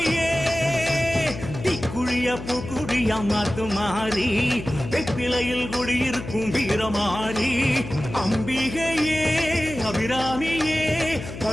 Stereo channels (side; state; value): left; noise; hum, 10 dB below the sound